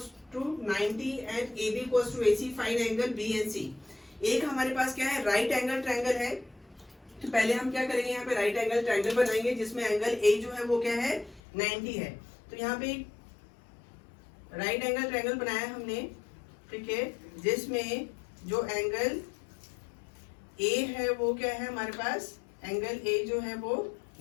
to 90 and AB equals to AC. Find angle B and C. एक हमारे पास क्या है, राइट एंगल ट्रायंगल है। तो पहले हम क्या करेंगे, यहाँ पे राइट एंगल ट्रायंगल बनाएंगे जिसमें एंगल A जो है वो क्या है, 90 है। तो यहाँ पे राइट एंगल ट्रायंगल बनाया हमने, ठीक है, जिसमें जो एंगल A है वो क्या है हमारे पास, एंगल A जो है वो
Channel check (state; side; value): drops out; right; at 11.4 s